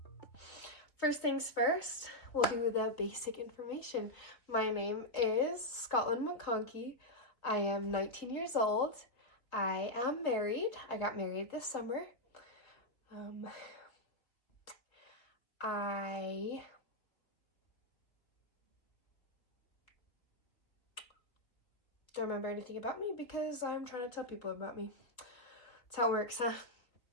First things first, we'll do the basic information. My name is Scotlyn McConkie. I am 19 years old. I am married. I got married this summer. I don't remember anything about me because I'm trying to tell people about me. That's how it works, huh?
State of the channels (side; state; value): right; late; 3.3 ms